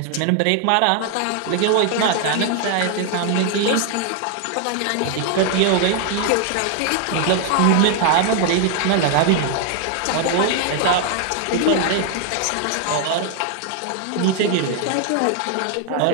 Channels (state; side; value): different; both; correlation 0.00